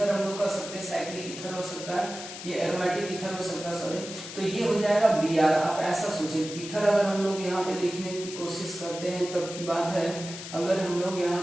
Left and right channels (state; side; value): noise; left; hiss, 11 dB below the sound